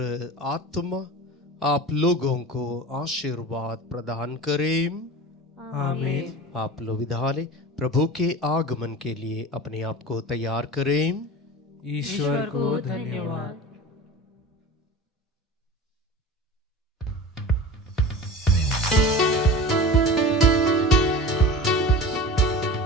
आत्मा आप लोगों को आशीर्वाद प्रदान करें। आमीन। आप लोग विधाले प्रभु के आगमन के लिए अपने आप को तैयार करें। ईश्वर को धन्यवाद।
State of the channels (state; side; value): normal; both; correlation 0.34